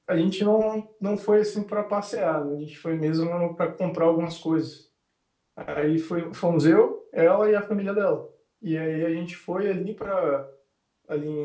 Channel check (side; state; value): both; identical; correlation 1.00